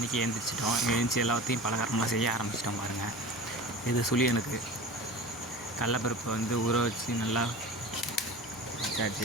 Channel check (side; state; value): both; normal; correlation 0.35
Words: எழுந்திரிச்சிட்டோம். எழுந்திரிச்சி எல்லாத்தையும் பலகாரம்லாம் செய்ய ஆரம்பிச்சிட்டோம். பாருங்கள், இது சுழியனுக்கு கடலப்பருப்பை வந்து ஊற வச்சு நல்லா